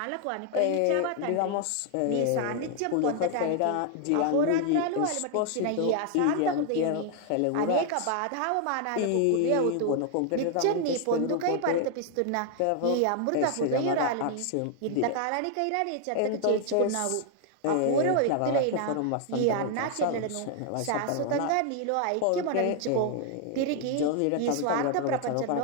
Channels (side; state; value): both; different; correlation 0.00